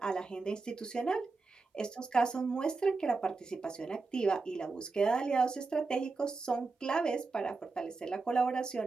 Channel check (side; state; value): left; quieter; 4.0 dB